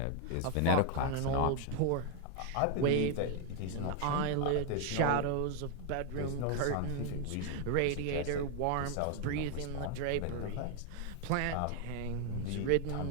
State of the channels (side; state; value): both; different; correlation 0.00